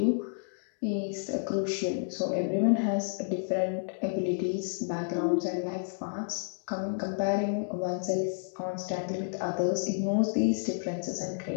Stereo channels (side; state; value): right; silent; digital silence